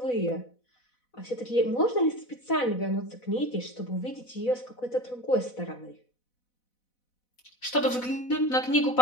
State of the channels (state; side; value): late; right; 4.0 ms